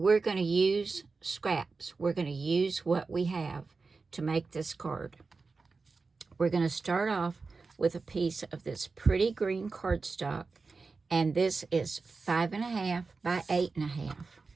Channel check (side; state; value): left; quieter; 4.2 dB